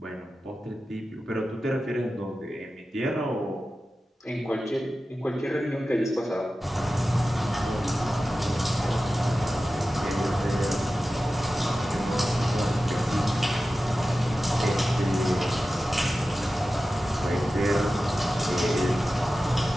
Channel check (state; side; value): normal; both; correlation 0.94